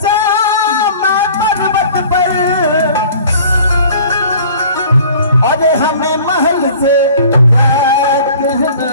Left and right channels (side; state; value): both; inverted; correlation -0.48